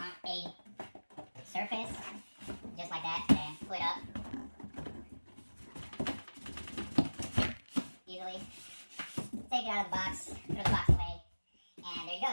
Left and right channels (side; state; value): both; inverted; correlation -1.00